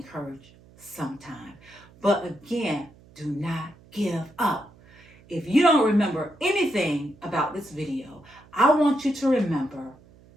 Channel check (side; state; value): right; noise; hum, 26 dB below the sound